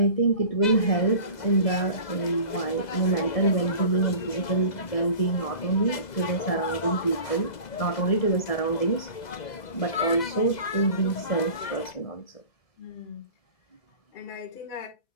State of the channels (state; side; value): late; right; 2.0 ms